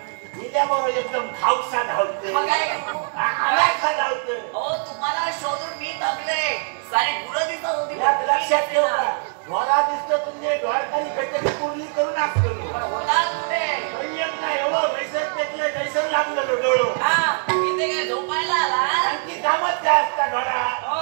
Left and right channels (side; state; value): left; silent; digital silence